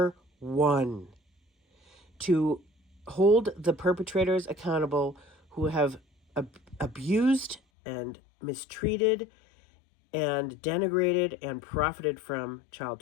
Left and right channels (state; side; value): drops out; right; at 7.6 s